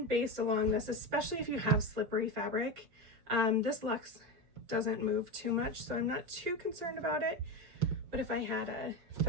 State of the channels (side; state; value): left; late; 6.3 ms